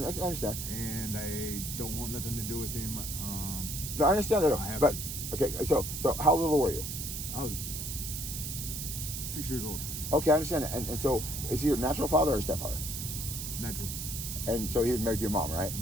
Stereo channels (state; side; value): noise; right; hiss, 5 dB below the sound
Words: And I don't want nothing to do with him. No, I understand that. But okay, so how little were you? I was 6 years old. Okay, I understand that. And so, is he your natural father or stepfather? Natural. And so he was married to your mom, right?